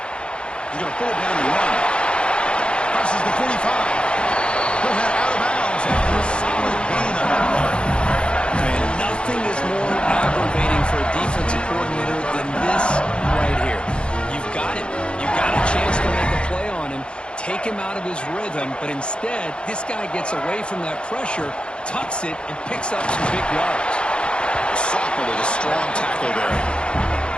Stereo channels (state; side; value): late; right; 0.055 ms